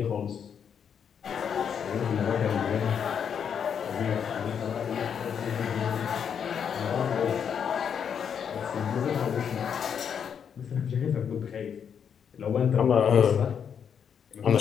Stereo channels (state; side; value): quieter; right; 7.6 dB